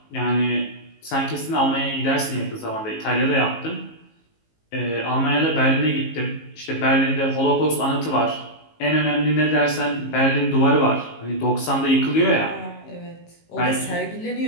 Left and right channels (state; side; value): late; right; 19 ms